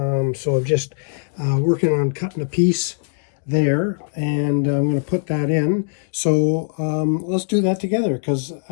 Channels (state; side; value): silent; right; digital silence